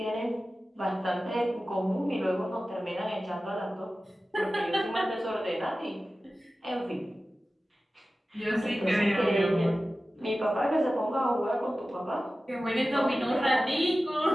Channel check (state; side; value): normal; both; correlation 0.95